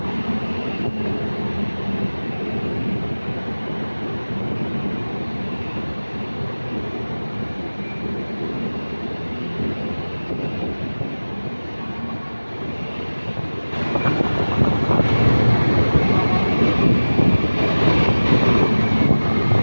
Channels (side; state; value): both; inverted; correlation -1.00